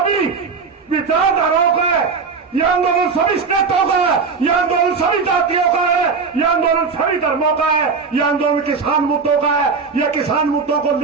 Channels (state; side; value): quieter; left; 5.1 dB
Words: विचारधाराओं का है, यह आंदोलन सभी स्टेटों का है, यह आंदोलन सभी जातियों का है, यह आंदोलन सभी धर्मों का है, यह आंदोलन किसान मुद्दों का है। यह किसान मुद्दों को